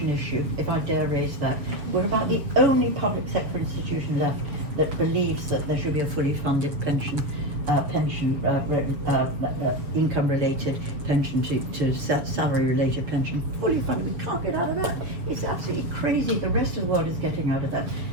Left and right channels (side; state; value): left; late; 6.9 ms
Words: issue, if I dare raise that. We're about the only public sector institution left that believes that there should be a fully funded pension, income-related pension to salary-related pension, fully funded. We can't get out of that. It's absolutely crazy. The rest of the world is getting out of that.